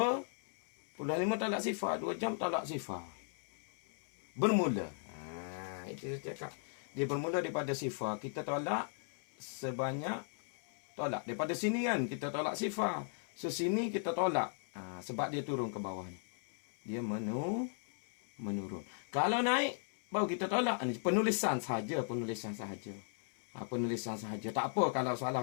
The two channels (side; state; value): right; silent; 53 dB below the other